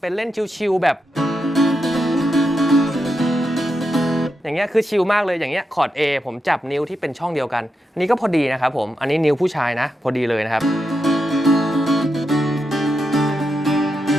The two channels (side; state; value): both; normal; correlation 0.86